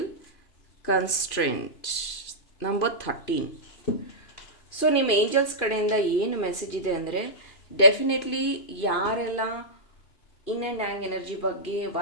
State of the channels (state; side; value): late; right; 2.9 ms